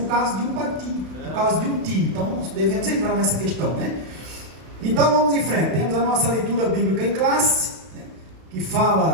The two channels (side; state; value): left; late; 32 ms